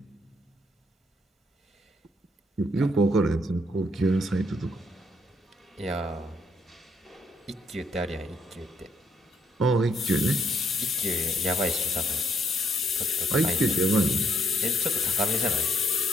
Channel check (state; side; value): normal; both; correlation 0.71